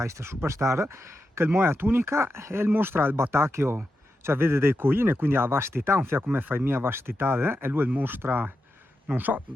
Superstar, che il moe tunica e il mostra il batacchio, cioè vede dei coine, quindi ha vastità, un fia come fai mia vastità, e lui il mostra, non so,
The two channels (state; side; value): normal; both; correlation 0.88